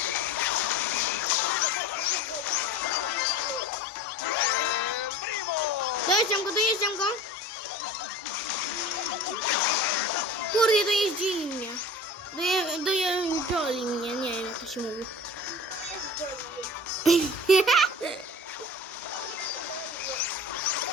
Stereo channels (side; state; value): both; normal; correlation 0.37